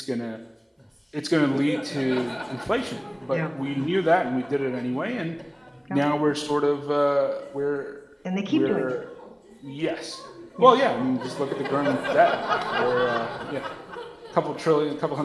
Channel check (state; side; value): identical; both; correlation 1.00